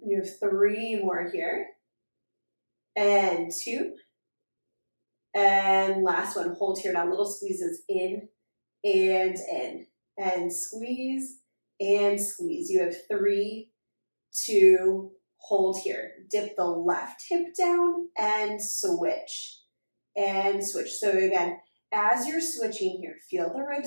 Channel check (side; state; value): both; inverted; correlation -1.00